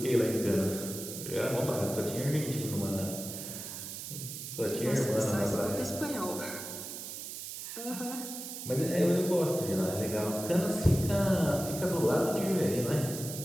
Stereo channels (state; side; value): noise; right; hiss, 8 dB below the sound